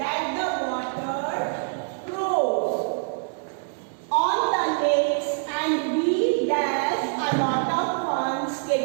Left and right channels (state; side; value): silent; left; digital silence